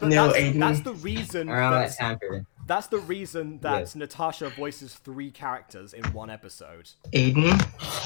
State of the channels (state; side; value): silent; right; digital silence